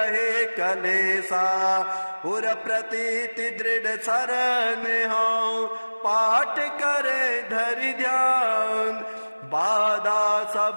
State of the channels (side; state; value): both; inverted; correlation -1.00